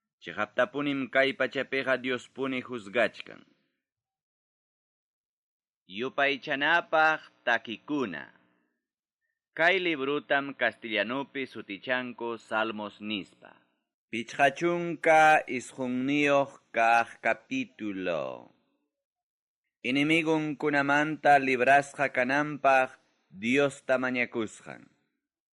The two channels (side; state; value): both; identical; correlation 1.00